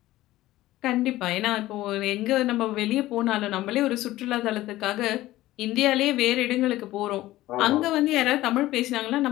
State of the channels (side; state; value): right; quieter; 16.2 dB